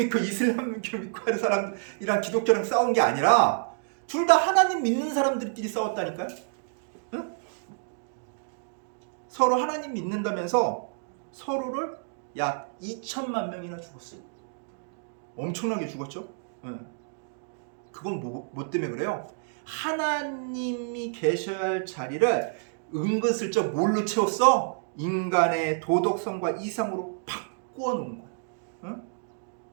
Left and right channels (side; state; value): left; silent; digital silence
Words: 이슬람교 믿고 하는 사람이랑 기독교랑 싸운 게 아니라 둘 다 하나님 믿는 사람들끼리 싸웠다니까요. 서로 하나님 믿는다면서 서로를 약 2천만 명이나 죽었어요. 엄청나게 죽었죠. 네. 그건 뭐 때문에 그래요? 하나님이 계셔야 할 자리를 은근슬쩍 뭘로 채웠어? 인간의 도덕성과 이상으로 바꾸어 놓은 거야. 응?